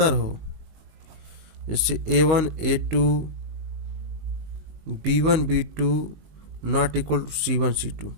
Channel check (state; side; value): late; left; 19 ms